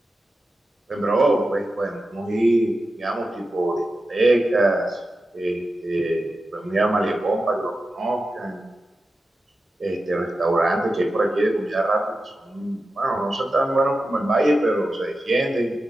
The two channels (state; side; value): normal; both; correlation 0.92